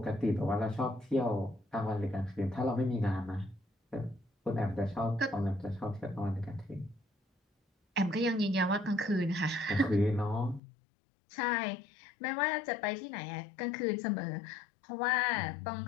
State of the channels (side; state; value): right; drops out; at 10.6 s